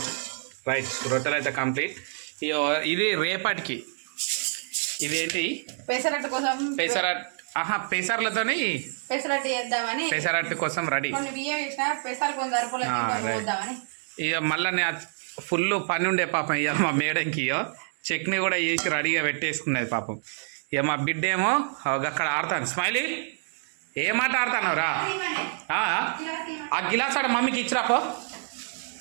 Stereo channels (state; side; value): silent; left; digital silence